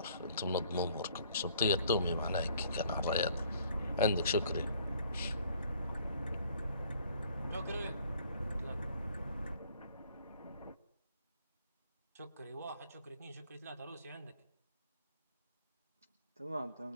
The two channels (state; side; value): inverted; both; correlation -0.60